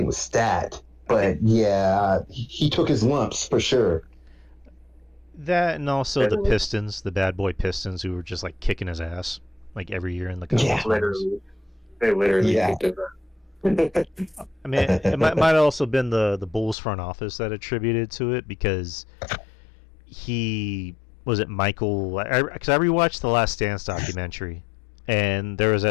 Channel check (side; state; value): right; drops out; at 16.8 s